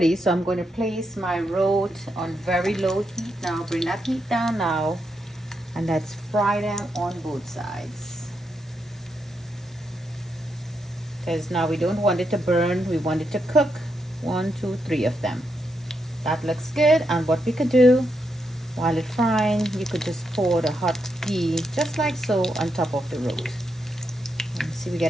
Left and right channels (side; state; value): both; normal; correlation 0.82